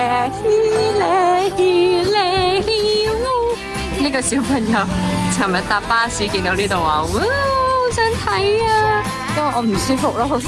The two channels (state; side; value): identical; both; correlation 1.00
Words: 湖。呢個小朋友尋日搭巴士見到呢度話，哇！好想睇啊！因為我唔舒服咯，好